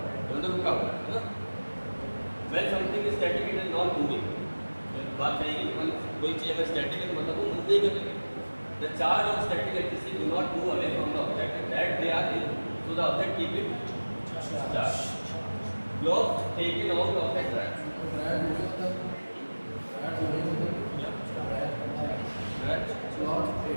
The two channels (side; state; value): both; inverted; correlation -1.00